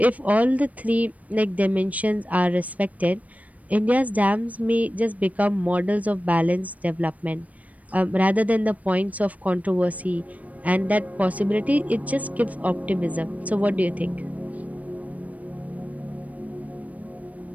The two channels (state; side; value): late; left; 0.071 ms